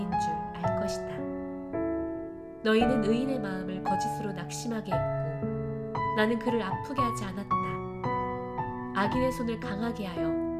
줄 알 것이다. 너희는 의인의 마음을 거짓으로 낙심하게 했고 나는 그를 아프게 하지 않았다. 악인의 손을 강하게 하여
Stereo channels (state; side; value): identical; both; correlation 1.00